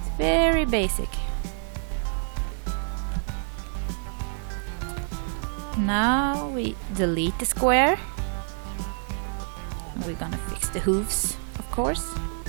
It's very basic. Now we delete the square. And we're gonna fix the hooves, of course.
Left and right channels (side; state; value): left; silent; digital silence